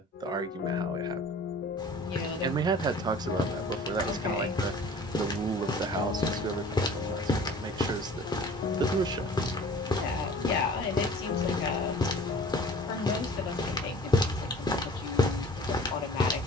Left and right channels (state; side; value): normal; both; correlation 0.47